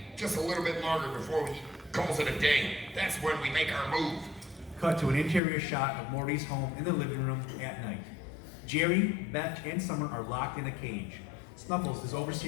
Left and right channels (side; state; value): right; drops out; at 5.4 s